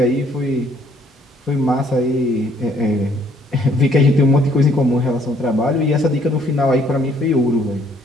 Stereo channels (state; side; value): normal; both; correlation 0.64